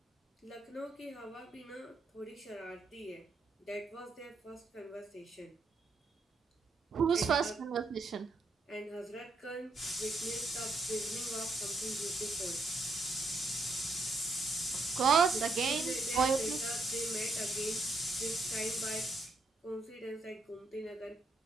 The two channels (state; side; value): quieter; left; 3.1 dB